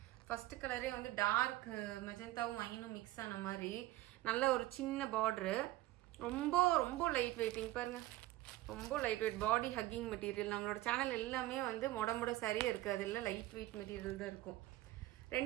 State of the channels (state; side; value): quieter; left; 16.8 dB